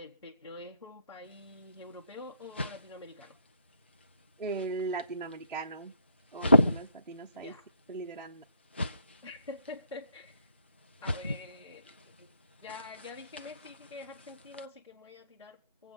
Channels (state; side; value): inverted; both; correlation -0.69